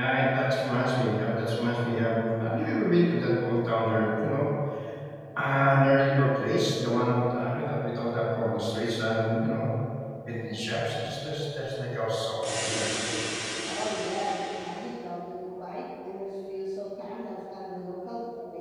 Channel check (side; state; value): both; identical; correlation 1.00